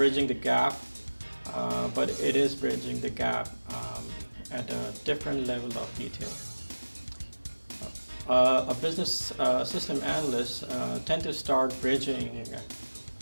gap, but it is bridging the gap at a different level of detail. A business system analyst tend to start bridging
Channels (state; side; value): inverted; both; correlation -1.00